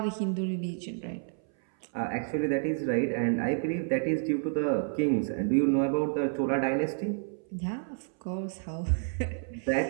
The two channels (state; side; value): silent; left; 58 dB below the other